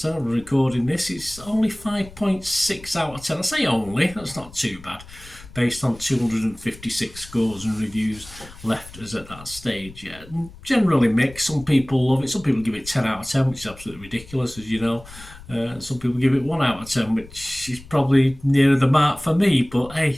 I'm recording this. It's only 5.6 out of 10. I say only, that's not too bad, based on 256 scores and reviews left us at that stage. Yeah, generally mixed. Some people love it. Some people give it 10 out of 10, which is absolutely ridiculous, as you know. Some people give it 1 out of 10, which is probably nearer the mark for me. But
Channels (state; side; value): noise; left; rumble, 19 dB below the sound